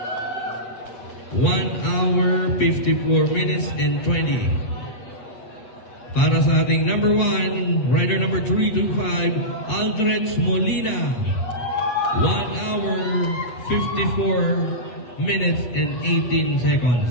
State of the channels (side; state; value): right; late; 8.4 ms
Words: 1 hour, 54 minutes and 20. Para sa ating number 1, rider number 325, Aldrich Molina. 1 hour, 54 minutes and 18 seconds.